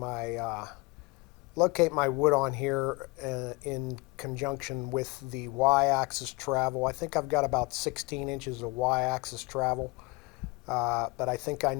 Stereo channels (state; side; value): quieter; right; 25.7 dB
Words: wood on here in conjunction with the y-axis travel. I think I've got about 16 inches of y-axis travel, but I think I